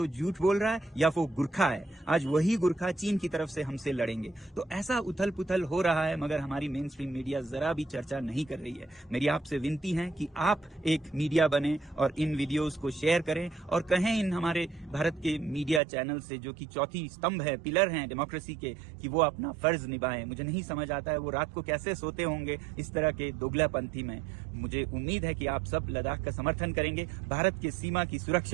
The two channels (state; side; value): drops out; left; at 15.8 s